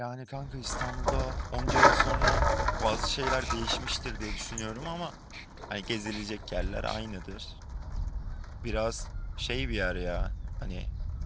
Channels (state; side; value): identical; both; correlation 1.00